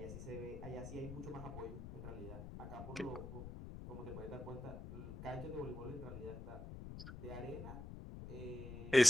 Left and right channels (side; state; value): left; noise; rumble, 10 dB below the sound